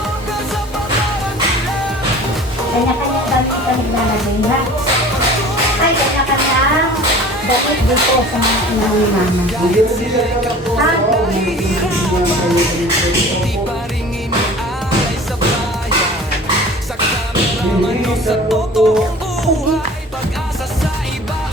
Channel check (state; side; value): normal; both; correlation 0.43